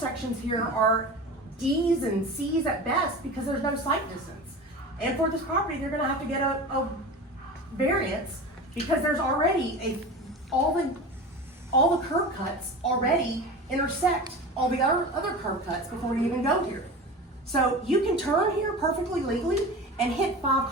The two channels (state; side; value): normal; both; correlation 0.32